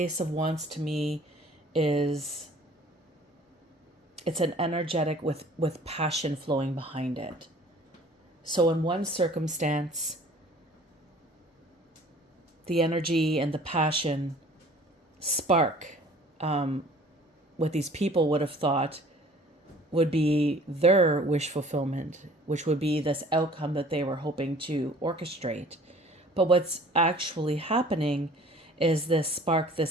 of Wands to me is, it's an energetic with passion flowing behind it. So in one circumstance, the energy and the passion spark, what these people would have thought would be their wish fulfillment, which would be this outcome that they were hoping to orchestrate. But what's actually happening is this spark,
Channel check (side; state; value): both; normal; correlation 0.50